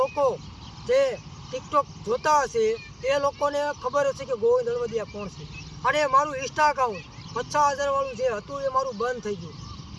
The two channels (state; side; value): identical; both; correlation 1.00